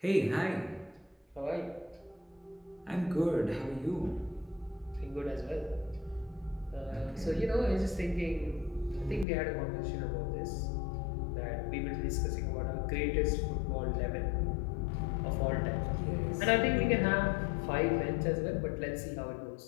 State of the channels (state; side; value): drops out; right; at 9.2 s